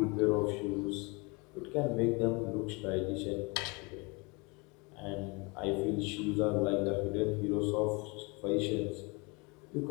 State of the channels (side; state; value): right; quieter; 28.5 dB